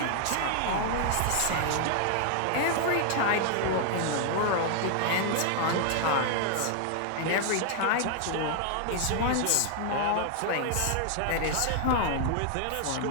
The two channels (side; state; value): both; different; correlation 0.00